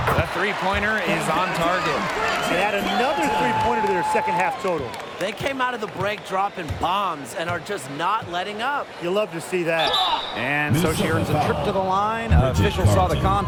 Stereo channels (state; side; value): identical; both; correlation 1.00